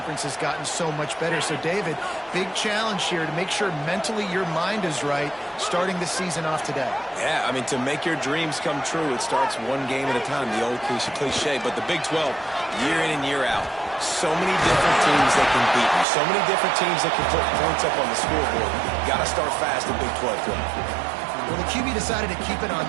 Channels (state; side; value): drops out; left; at 16.1 s